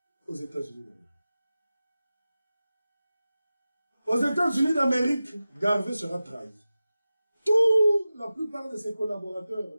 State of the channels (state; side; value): inverted; both; correlation -0.95